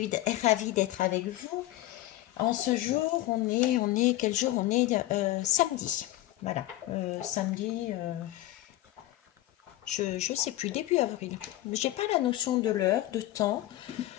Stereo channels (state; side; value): quieter; right; 15.9 dB